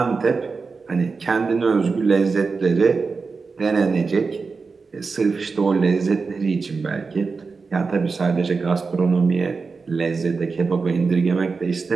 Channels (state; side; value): quieter; left; 4.6 dB